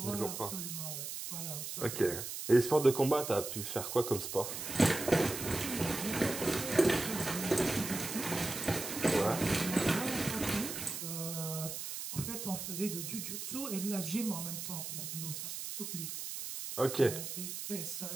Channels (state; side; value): noise; right; hiss, 6 dB below the sound